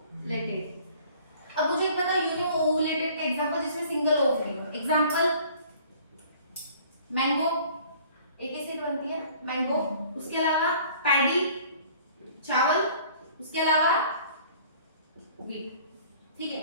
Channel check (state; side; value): inverted; both; correlation -0.52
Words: अब मुझे पता यूनि ओवुलेटेड का एग्जांपल जिसमें सिंगल ओवरी हो। एग्जांपल मैंगो, एक ही सीड बनती है मैंगो। उसके अलावा पैडी चावल, उसके अलावा व्हीट। ठीक